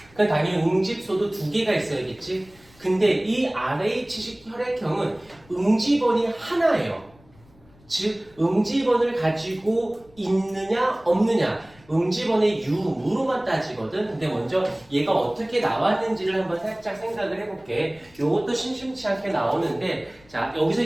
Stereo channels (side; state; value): left; noise; rumble, 28 dB below the sound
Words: 그러니까 당연히 응집소도 2개가 있어야겠지. 근데 이 RH식 혈액형은 응집원이 하나예요. 즉 응집원을 가지고 있느냐 없느냐 응집원의 유무로만 따지거든. 근데 먼저 얘가 어떻게 나왔는지를 한번 살짝 생각을 해볼게. 요것도 심심치 않게 나오는데 자 여기서